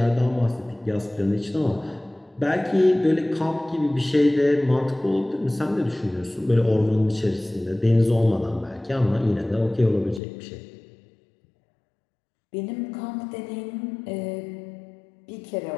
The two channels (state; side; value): drops out; right; at 10.2 s